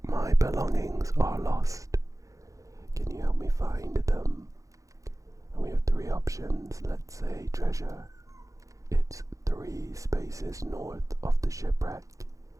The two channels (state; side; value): late; left; 0.16 ms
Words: My belongings are lost. Can you help me find them?" And we have three options. Let's say treasure. It's 3 spaces north of the shipwreck.